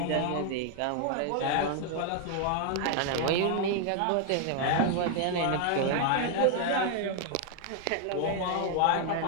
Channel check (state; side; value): different; both; correlation 0.00